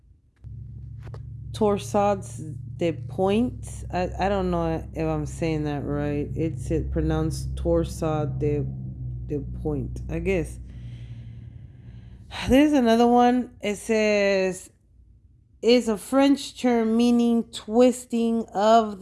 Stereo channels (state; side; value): identical; both; correlation 1.00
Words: Torsades de Point. I don't know if I'm saying that right. It's pronounced Torsade de Point, I guess. There's another one. It says is a French term meaning twisting of